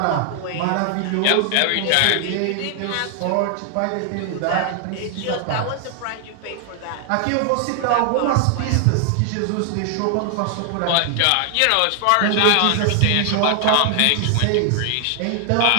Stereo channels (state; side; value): different; both; correlation 0.00